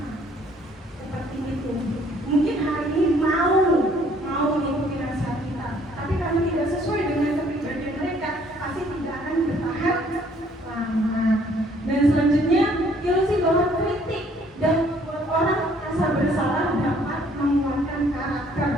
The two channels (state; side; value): normal; both; correlation 0.62